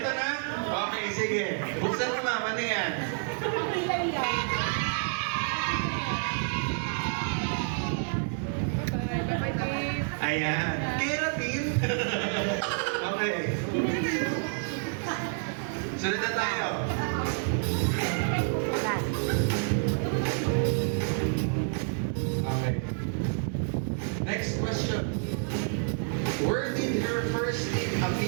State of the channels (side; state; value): left; silent; 57 dB below the other